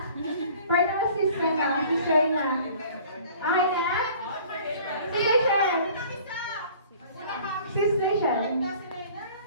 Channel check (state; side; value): inverted; both; correlation -0.49